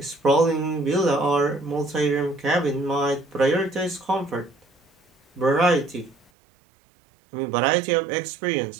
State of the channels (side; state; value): left; drops out; at 6.3 s